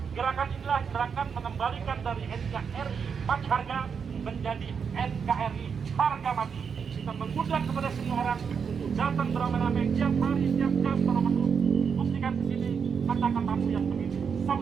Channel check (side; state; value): left; quieter; 6.4 dB